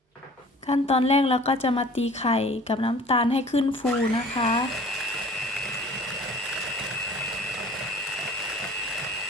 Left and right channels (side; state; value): both; normal; correlation 0.48